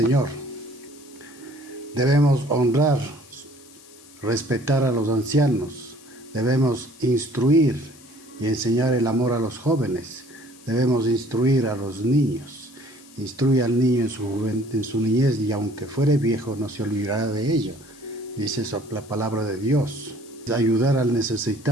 Debemos honrar, respetar a los ancianos. Debemos instruir y enseñar el amor a los jóvenes. Debemos instruir a los niños. Instruye al niño en su niñez, y aunque fuere viejo no se olvidará de ello. Dice eso la palabra de Dios. Ayudar al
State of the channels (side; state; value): left; noise; hiss, 23 dB below the sound